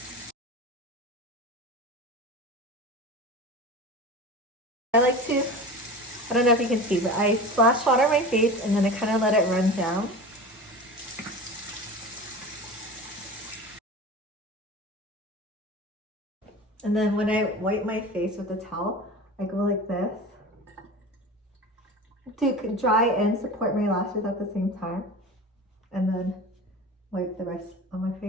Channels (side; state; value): both; normal; correlation 0.33